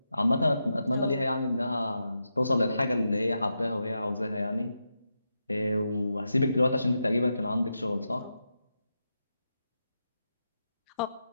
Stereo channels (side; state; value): both; inverted; correlation -0.87